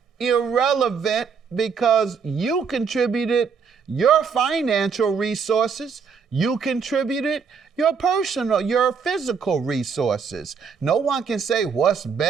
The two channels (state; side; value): quieter; left; 6.0 dB